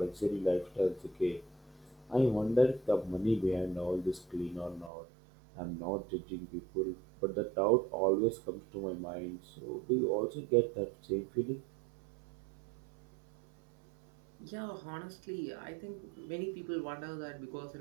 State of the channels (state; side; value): drops out; left; at 4.9 s